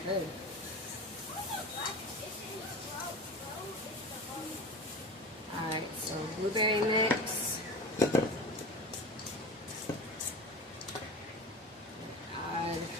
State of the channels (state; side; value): normal; both; correlation 0.30